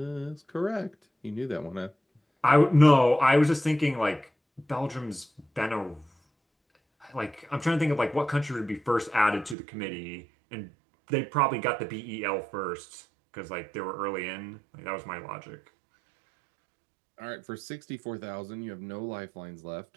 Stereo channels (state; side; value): drops out; left; at 9.6 s